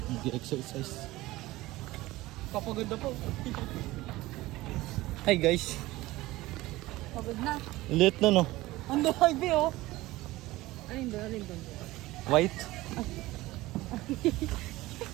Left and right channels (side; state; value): left; quieter; 18.4 dB